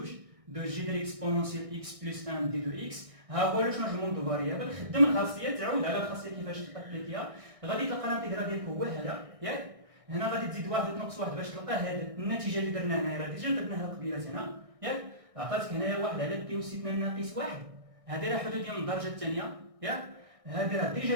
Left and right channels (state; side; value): late; left; 1.6 ms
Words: دو جي ديال اكسبونونسيال اكس بلس 1 دي دو اكس. ها هو لو شونجمون دو فاريابل. خدم الخاصيه تعود على الخاصيه كيفاش تابليكيها غادي تلقى الانتيغرال ديالك هو هذا ياك. هنا غادي تزيد واحد تنقص واحد باش تلقى هاد النتيجه اللي درنا هنايا، راه ديجا درناها قبيله هنا ياك، عطاتك هنايا واحد على بي واستثناء ناقص واحد، هذه راه حدوديه من الدرجه الثانيه ياك، هذه راه ديجا